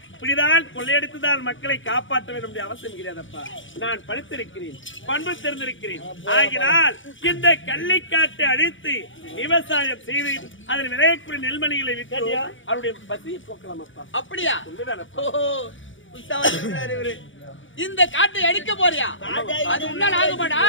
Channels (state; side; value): late; right; 0.56 ms